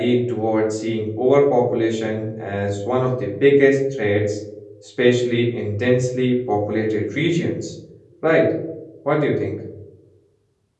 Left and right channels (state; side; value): identical; both; correlation 1.00